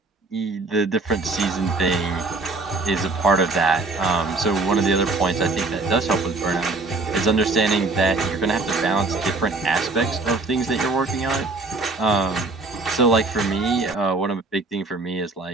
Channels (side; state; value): left; quieter; 3.4 dB